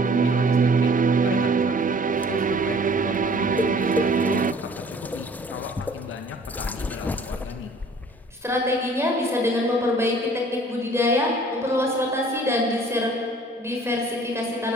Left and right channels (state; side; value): normal; both; correlation 0.53